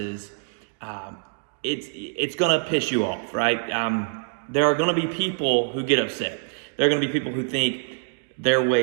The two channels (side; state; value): left; silent; digital silence